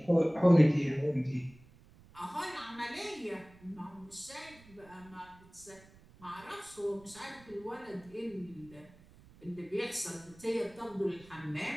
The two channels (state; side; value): noise; right; rumble, 24 dB below the sound